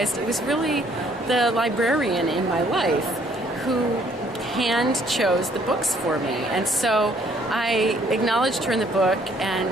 it was really the librarian in my life who hand chose the books for me. And so I acknowledged her in the book,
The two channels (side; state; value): both; normal; correlation 0.64